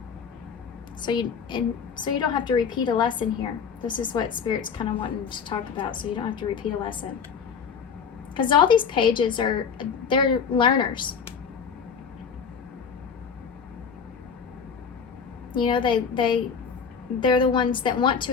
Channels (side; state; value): right; quieter; 6.4 dB